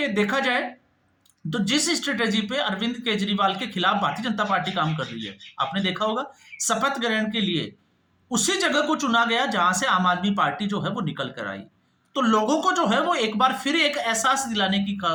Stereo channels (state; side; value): identical; both; correlation 1.00